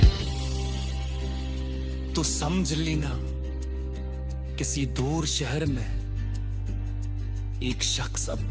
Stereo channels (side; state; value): both; identical; correlation 1.00